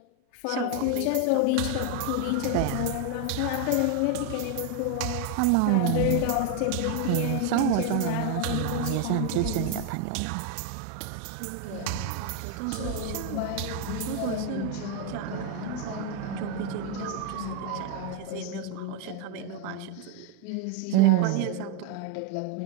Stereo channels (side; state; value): both; different; correlation 0.01